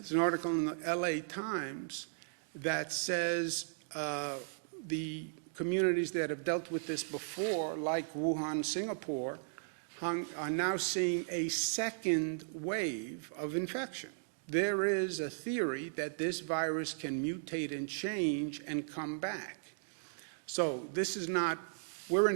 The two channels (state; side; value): silent; left; digital silence